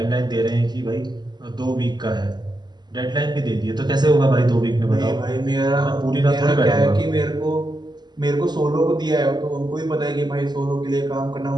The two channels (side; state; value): left; late; 0.21 ms